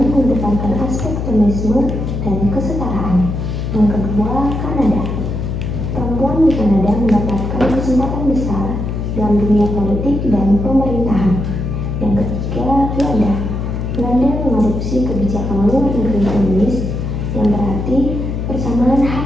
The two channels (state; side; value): noise; left; hum, 3 dB below the sound